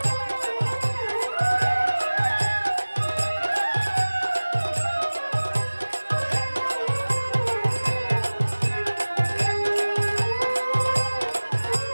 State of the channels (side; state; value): both; inverted; correlation -1.00